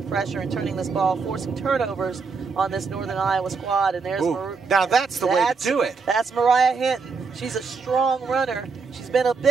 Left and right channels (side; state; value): left; quieter; 4.9 dB